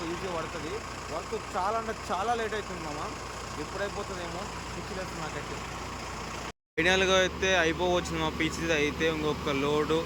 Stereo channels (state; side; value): identical; both; correlation 1.00